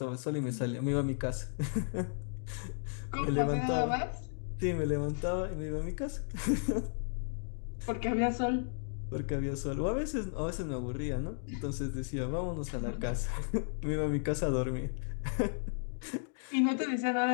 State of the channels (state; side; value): silent; right; digital silence